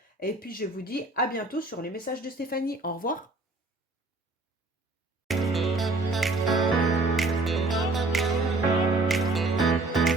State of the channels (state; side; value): quieter; left; 3.1 dB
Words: Et puis je vous dis à bientôt sur les messages de Stéphanie. Au revoir.